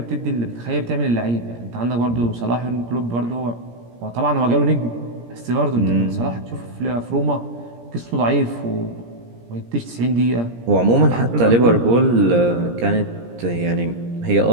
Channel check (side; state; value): left; late; 17 ms